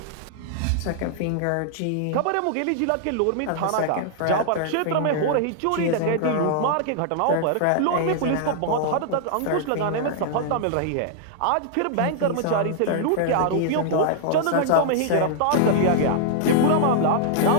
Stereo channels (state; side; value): different; both; correlation -0.01